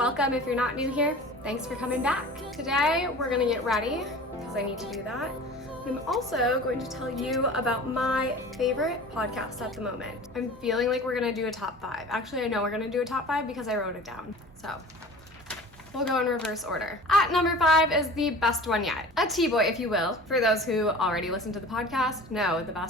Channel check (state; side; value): normal; both; correlation 0.40